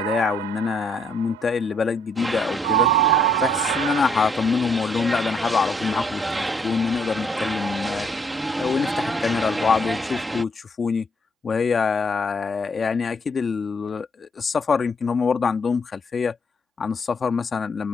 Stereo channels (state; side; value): normal; both; correlation 0.69